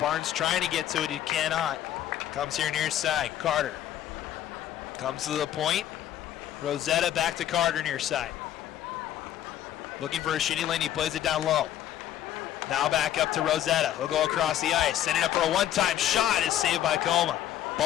trying to get to it, he cannot. Comes here near side, Carter. Comes to the point. Rosetta back to Carter near side. Looking for a shitty lane, he plays it down low. Now back up to Rosetta. He'll go across the ice. Sending up for a one-time shot is saved by Coma.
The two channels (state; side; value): quieter; right; 11.7 dB